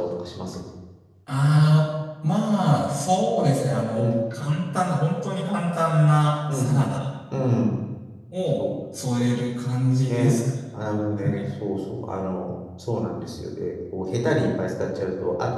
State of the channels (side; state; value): both; identical; correlation 1.00